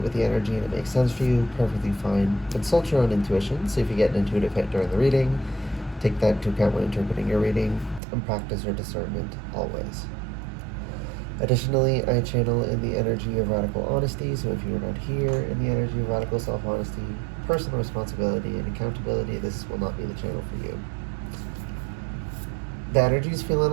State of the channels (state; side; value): drops out; left; at 8.0 s